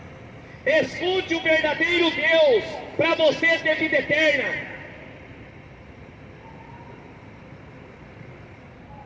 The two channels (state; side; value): identical; both; correlation 1.00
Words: Escute o verdadeiro Deus, para você ter vida eterna.